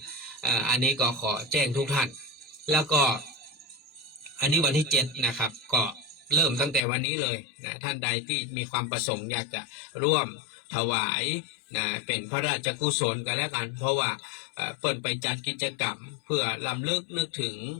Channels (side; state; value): right; drops out; at 6.8 s